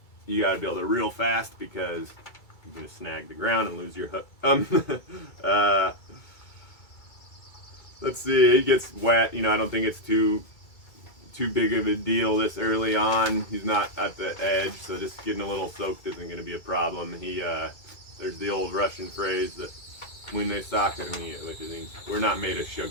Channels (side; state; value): right; late; 2.3 ms